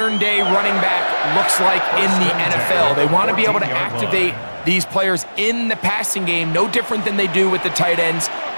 running back looks like in the NFL. They want to be able to activate these players in the passing game, no different than they do with the tight ends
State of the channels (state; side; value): inverted; both; correlation -1.00